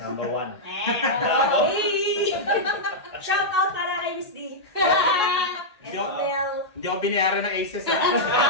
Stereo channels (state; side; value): normal; both; correlation -0.08